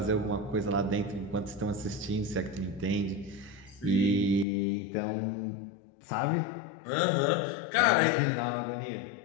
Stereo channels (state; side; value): drops out; right; at 4.5 s